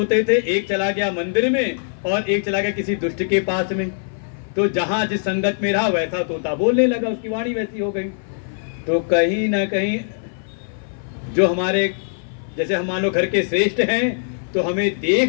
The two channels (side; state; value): right; silent; 56 dB below the other